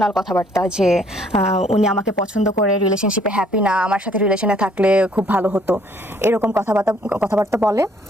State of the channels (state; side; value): normal; both; correlation 0.63